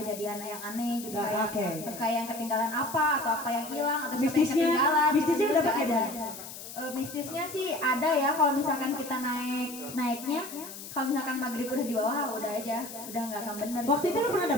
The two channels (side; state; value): left; noise; hiss, 12 dB below the sound